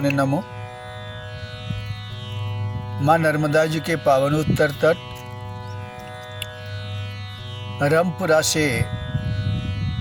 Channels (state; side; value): identical; both; correlation 1.00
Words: नमो। माँ नर्मदा जी के पावन उत्तर तट रामपुरा से